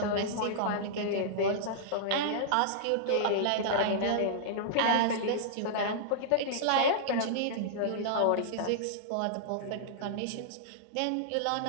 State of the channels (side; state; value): both; different; correlation -0.02